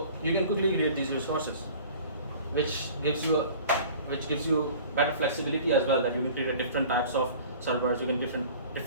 you can quickly create these resources, which gives you better flexibility as well. That you can create different types of servers, you can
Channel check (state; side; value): inverted; both; correlation -0.45